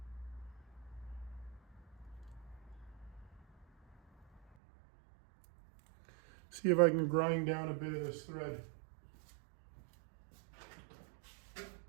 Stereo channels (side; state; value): left; drops out; at 4.4 s